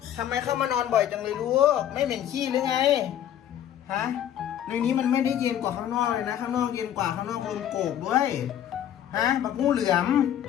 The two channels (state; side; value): quieter; right; 10.7 dB